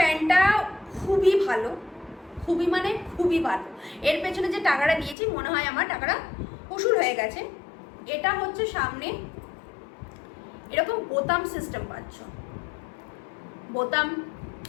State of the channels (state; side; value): drops out; right; at 5.2 s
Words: খুবই ভালো, খুবই মানে খুবই ভালো। এর পেছনে যে টাকাটা দিয়েছি মনে হয় আমার টাকাটা উসুল হয়ে গেছে। এটা হচ্ছে সামনে এরকম বোতাম সিস্টেম পাচ্ছ, বোতাম